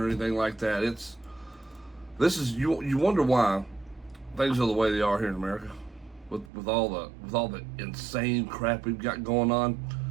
anything like that. You wonder why things are the way they are here in America, with all the insane crap we've got going on.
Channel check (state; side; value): drops out; left; at 6.5 s